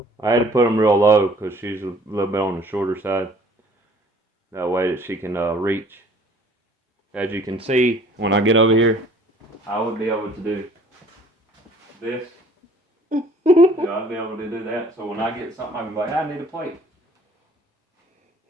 I had to put them real low because she's a little bit on the shorter side. That way that she can reach. As you can see, when I get over here, I would be able to do this. I'd be able to do that. So when I get something, I can be like, I need a plate.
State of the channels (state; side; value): normal; both; correlation 0.54